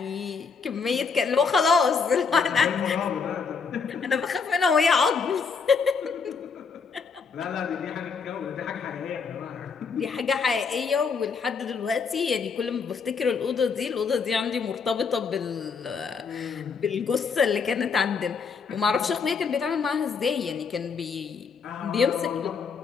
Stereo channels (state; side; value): quieter; right; 5.4 dB